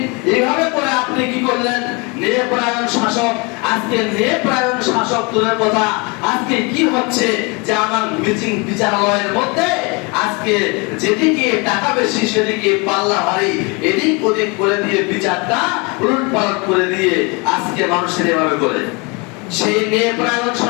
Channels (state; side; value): quieter; right; 29.5 dB